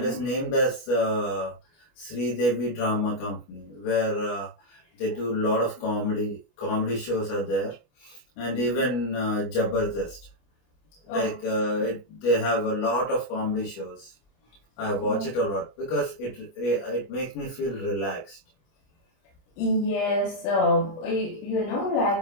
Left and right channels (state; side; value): late; right; 25 ms